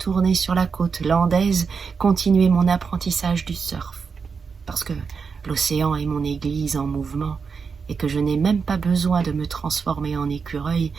sur la côte landaise, continuer mon apprentissage du surf. Parce que l'océan est mon église en mouvement, et que je n'ai même pas besoin de me transformer en écureuil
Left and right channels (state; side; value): quieter; left; 5.5 dB